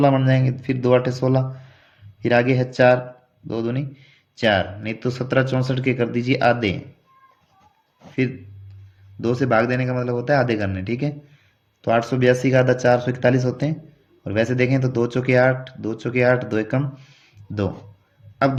बन जाएंगे, फिर 2 अट्ठे 16, फिर आगे है 4, 2 दूनी 4, नहीं तो 1764 के कर दीजिए आधे। फिर 2 से भाग देने का मतलब होता है आधे करने, ठीक है। तो 882 का आधा 441 होते हैं। और वैसे देखें तो 2 चौके 8, 2 चौके 8, 2 एकम 2। अब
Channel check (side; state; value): both; identical; correlation 1.00